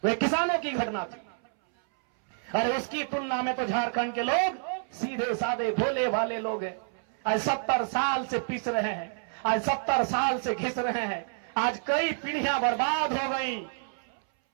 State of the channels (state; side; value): silent; left; 59 dB below the other